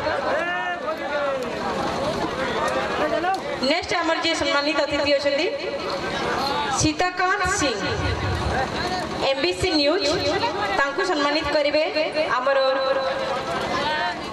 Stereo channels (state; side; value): identical; both; correlation 1.00